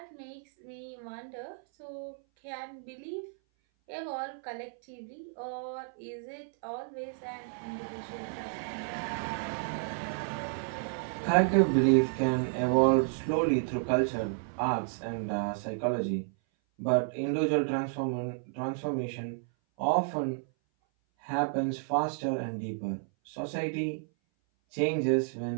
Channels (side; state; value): left; silent; 57 dB below the other